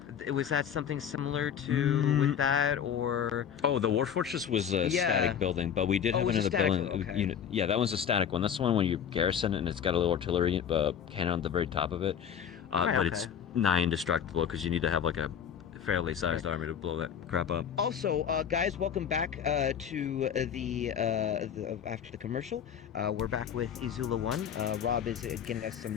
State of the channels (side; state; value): right; quieter; 8.3 dB